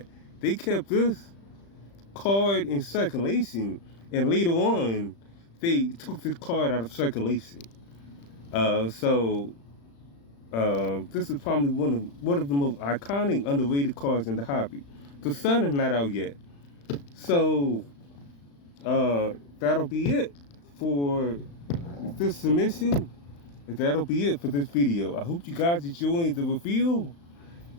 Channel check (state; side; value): late; right; 35 ms